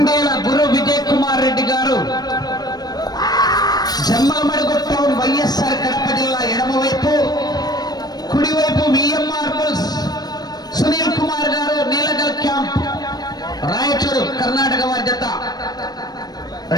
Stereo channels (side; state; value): right; late; 0.19 ms